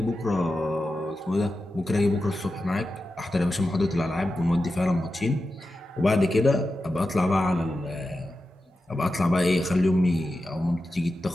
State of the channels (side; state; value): both; normal; correlation 0.91